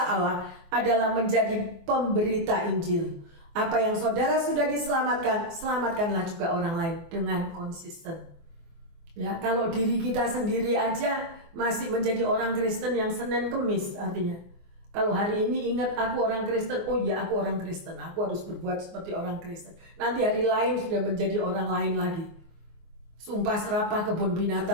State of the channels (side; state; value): left; late; 24 ms